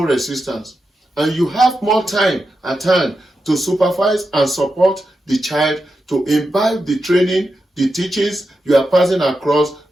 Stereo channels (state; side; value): normal; both; correlation 0.89